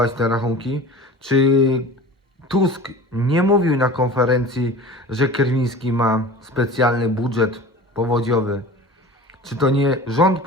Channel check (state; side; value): normal; both; correlation 0.38